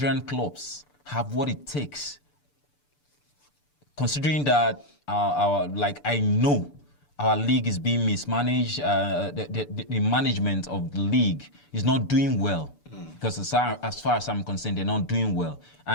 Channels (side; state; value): right; late; 6.9 ms